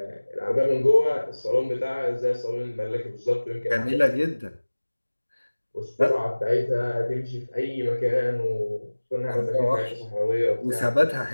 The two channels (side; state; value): both; inverted; correlation -1.00